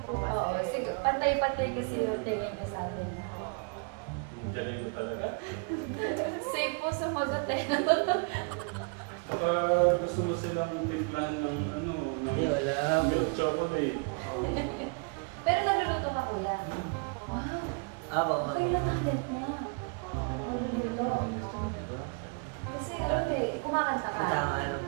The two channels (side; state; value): left; quieter; 36.0 dB